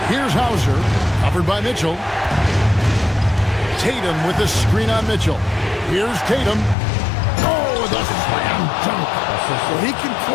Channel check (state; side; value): drops out; right; at 6.8 s